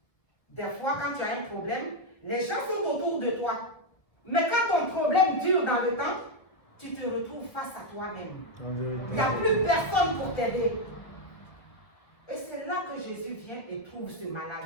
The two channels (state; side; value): late; right; 1.0 ms